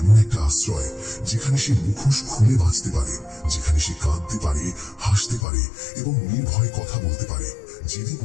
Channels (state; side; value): drops out; right; at 5.5 s